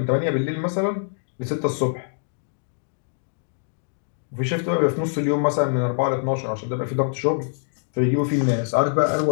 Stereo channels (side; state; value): right; silent; digital silence